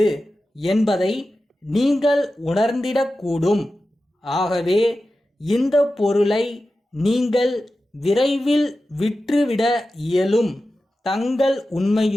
என்பதை நீங்கள் உணர்ந்திடக்கூடும். ஆகவே இந்த பொருளை நீங்கள் விரைவில் விற்றுவிட இயலும். தங்கள்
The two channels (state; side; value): normal; both; correlation 0.93